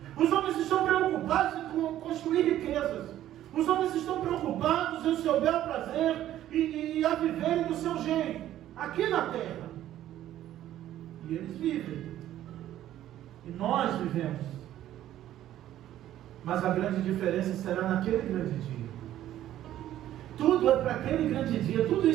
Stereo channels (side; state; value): left; quieter; 12.6 dB